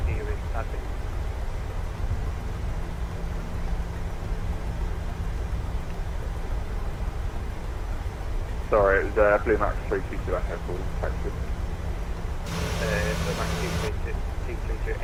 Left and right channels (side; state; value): both; identical; correlation 1.00